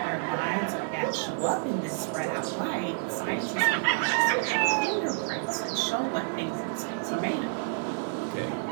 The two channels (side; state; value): left; silent; 57 dB below the other